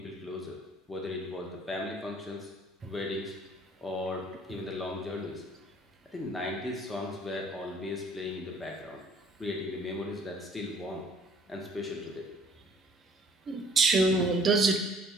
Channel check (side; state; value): both; normal; correlation 0.57